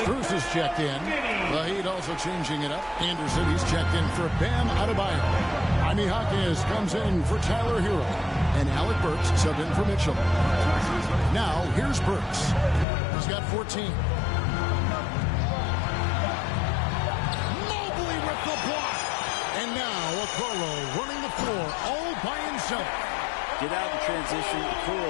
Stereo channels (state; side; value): drops out; right; at 12.9 s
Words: is checked in. The Heat also changing it up. Anderson, he's checked in for Bam Adebayo. Jaime Jaquez comes in for Tyler Hero. And Alec Burks subbed in for Mitchell. Now, here's Burks. He's got 14. Mobley with the block. And now, Okoro running the floor all by himself. Get out in transition.